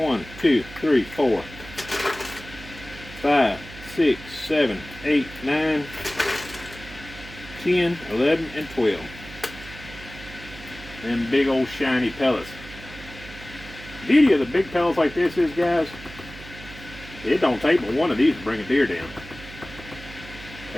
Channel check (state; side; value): noise; right; hum, 16 dB below the sound